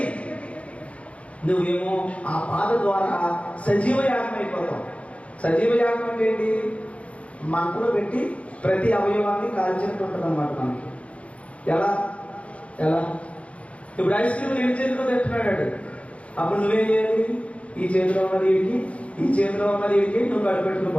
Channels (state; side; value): late; right; 0.063 ms